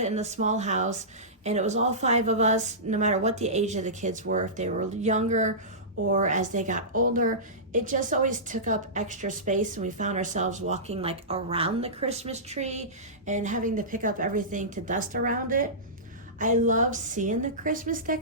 in the small house and it was all 5 of us, no matter what the age of the kids were, if they were younger or as they got older, it just always took up extra space, and we found ourselves walking like around the Christmas tree and having to pick up everything to dust around it. I love seeing the Christmas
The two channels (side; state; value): both; normal; correlation -0.19